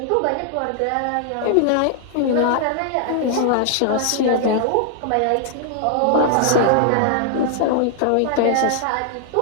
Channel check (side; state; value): both; different; correlation 0.00